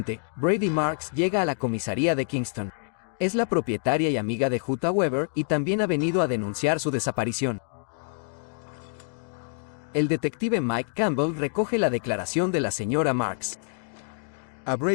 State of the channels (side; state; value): right; silent; digital silence